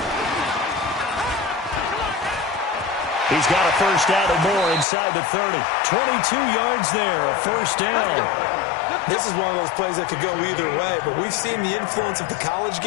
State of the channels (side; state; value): right; drops out; at 4.9 s